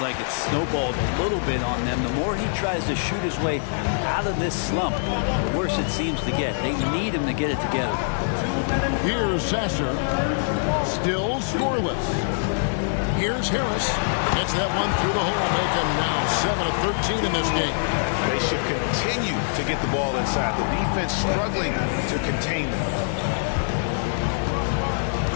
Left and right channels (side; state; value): right; silent; digital silence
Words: like it's snowballed a little bit on them. The more he tries to shoot his way out of this slump, the worse it seems to get. They need him to get it together. Here's Sasser. Still scoreless. Here's Harris. Gets that one through the hole. Make him now 7 of 13 in this game. They should continue to get the ball inside. The defense struggling to contain them.